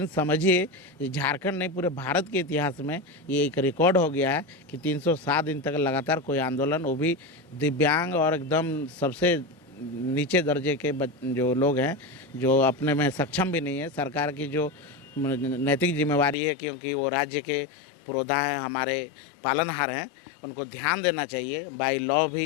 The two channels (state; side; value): drops out; right; at 16.4 s